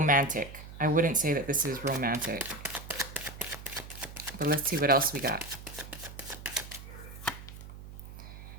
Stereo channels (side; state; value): right; noise; hum, 14 dB below the sound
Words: I wouldn't say that this is romantic. But let's see what else we got.